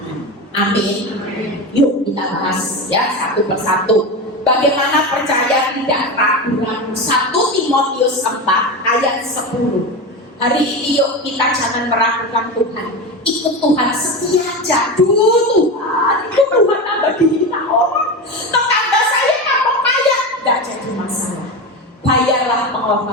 Amin. Yuk kita bahas ya satu persatu. Bagaimana percaya tidak ragu-ragu. 1 Timotius 4 ayat 10. Hari ini yuk kita jangan meragukan Tuhan. Ikut Tuhan, setia aja. Tuhan, ikut Tuhan tambah dihina orang. Tetangga saya kalau kaya, gak jadi masalah. Bayarlah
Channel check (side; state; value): both; normal; correlation 0.21